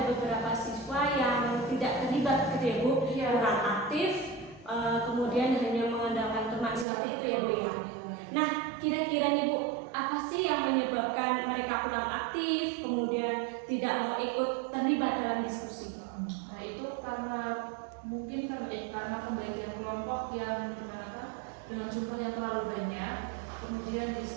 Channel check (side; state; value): left; drops out; at 6.9 s